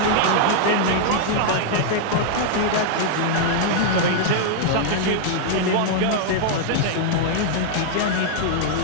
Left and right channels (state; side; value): different; both; correlation -0.01